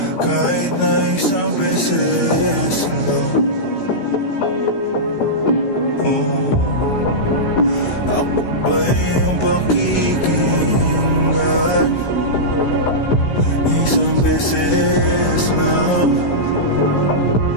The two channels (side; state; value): right; late; 16 ms